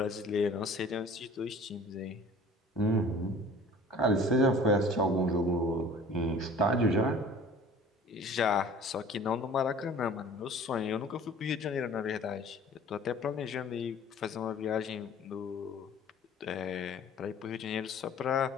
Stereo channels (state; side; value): normal; both; correlation 0.47